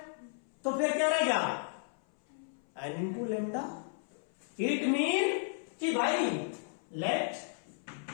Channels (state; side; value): silent; right; 55 dB below the other